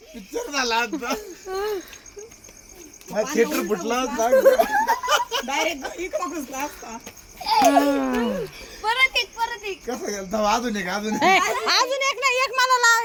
पिक्चर झाला आता. थिएटर फुटला डायरेक्ट इकडं घुसला असता. परत एक कसं गेलं अजून एक अजून एक ना, एक मला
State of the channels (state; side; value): identical; both; correlation 1.00